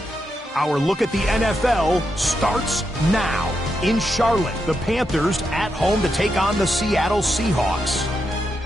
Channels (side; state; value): both; normal; correlation 0.84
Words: Our look at the NFL starts now. In Charlotte, the Panthers at home to take on the Seattle Seahawks.